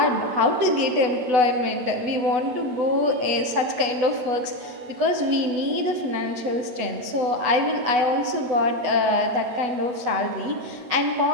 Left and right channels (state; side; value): late; left; 8.1 ms